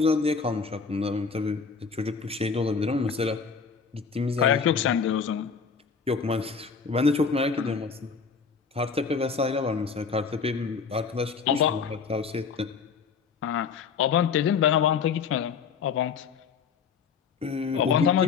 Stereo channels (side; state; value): right; quieter; 5.8 dB